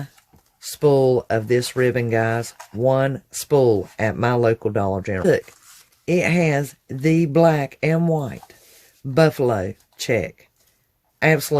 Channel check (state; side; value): identical; both; correlation 1.00